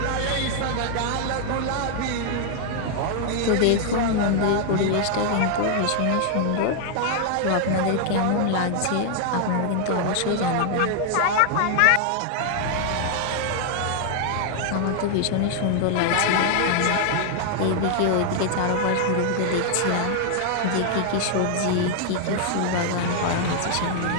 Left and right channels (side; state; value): both; different; correlation 0.00